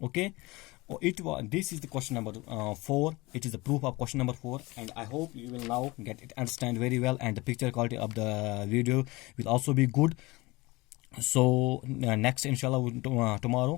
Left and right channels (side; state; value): right; quieter; 22.4 dB